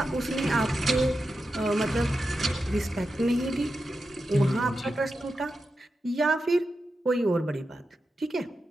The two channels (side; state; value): both; normal; correlation 0.89